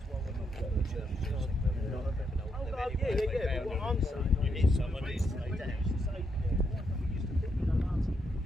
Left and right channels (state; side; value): normal; both; correlation 0.79